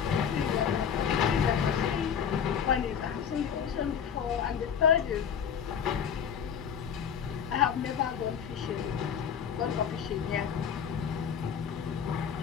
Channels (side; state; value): right; quieter; 7.7 dB